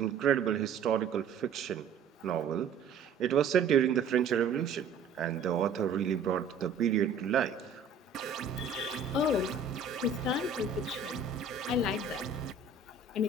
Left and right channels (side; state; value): left; quieter; 4.9 dB